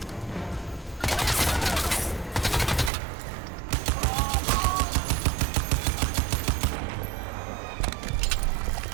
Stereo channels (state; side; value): drops out; left; at 2.9 s